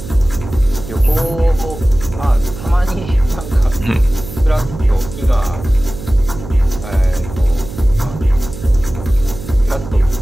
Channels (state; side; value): noise; right; hum, 12 dB below the sound